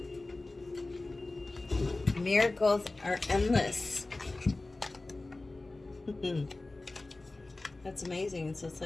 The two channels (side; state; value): right; quieter; 3.1 dB